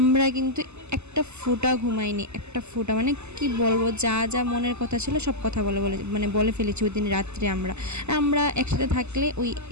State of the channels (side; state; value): left; late; 0.82 ms